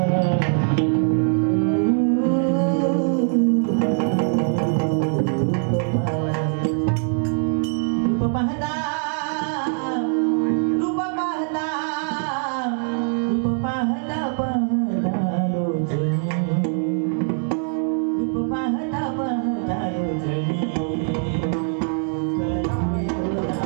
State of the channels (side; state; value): left; silent; 58 dB below the other